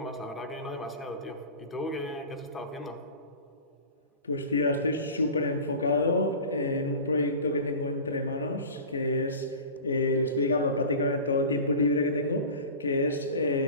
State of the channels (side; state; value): both; inverted; correlation -0.36